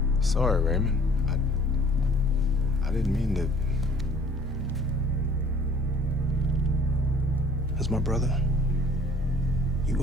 Sorry, Raymond. I didn't mean to... As my brother, you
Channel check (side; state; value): both; normal; correlation 0.53